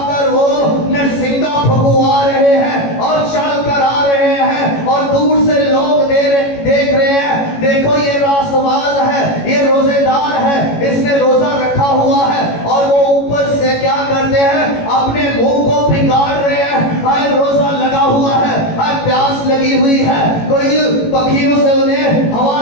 वो नरसिंगा फुकवा रहे हैं और चल कर आ रहे हैं, और दूर से लोग देख रहे हैं, देखो ये रासबाज है, ये रोजेदार है, इसने रोजा रखा हुआ है। और वो ऊपर से क्या करते हैं? अपने मुंह को बिगाड़ रहे हैं, हाय रोजा लगा हुआ है, हाय प्यास लगी हुई है, कोई पक्षियों से उन्हें हवा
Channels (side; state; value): right; late; 18 ms